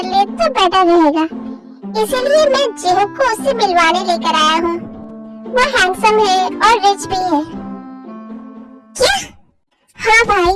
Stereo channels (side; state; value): both; identical; correlation 1.00